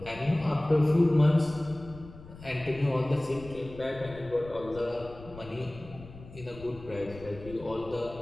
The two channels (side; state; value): left; noise; rumble, 17 dB below the sound